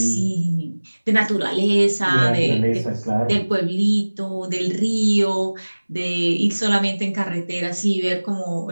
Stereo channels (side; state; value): both; inverted; correlation -1.00